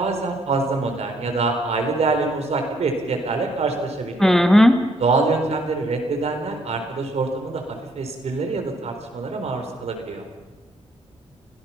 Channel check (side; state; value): both; normal; correlation 0.69